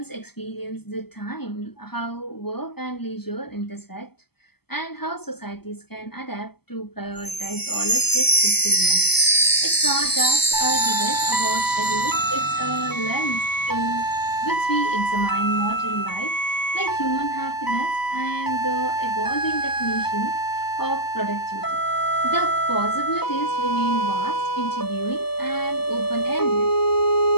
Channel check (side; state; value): right; late; 0.96 ms